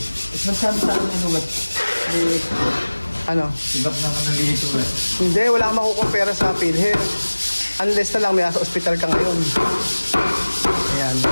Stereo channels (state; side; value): inverted; both; correlation -1.00